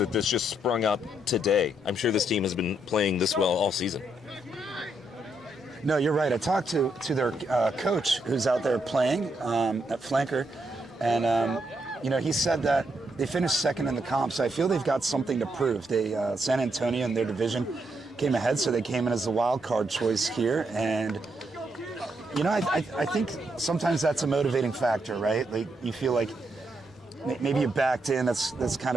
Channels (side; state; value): both; normal; correlation 0.78